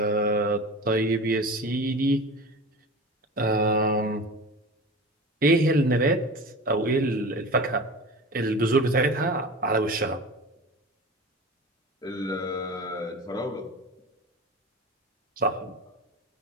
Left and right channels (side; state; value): both; normal; correlation 0.32